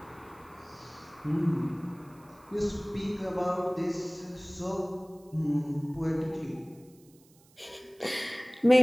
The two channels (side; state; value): right; noise; hiss, 29 dB below the sound